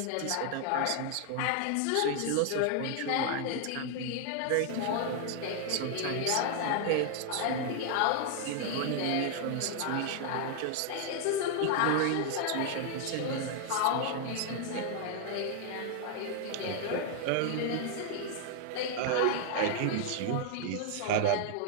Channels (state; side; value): different; both; correlation 0.00